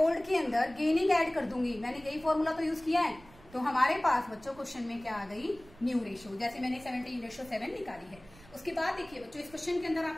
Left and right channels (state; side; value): noise; right; rumble, 23 dB below the sound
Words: के अंदर गेनिंग ऐड कर दूंगी, मैंने यही फॉर्मूला तो यूज किया है, तो हमारे पास बच्चों क्वेश्चन में क्या आ गई, न्यू रेशियो, जैसे मैंने 17:7 निकाली है। उसके बाद देखिए बच्चों इस क्वेश्चन के अंदर